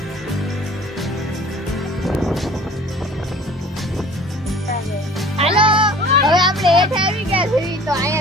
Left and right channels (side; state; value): both; normal; correlation 0.47